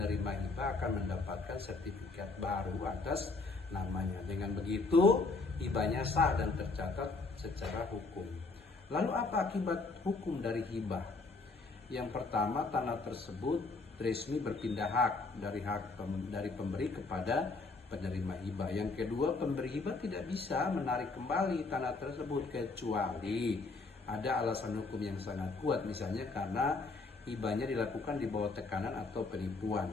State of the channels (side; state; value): right; quieter; 3.8 dB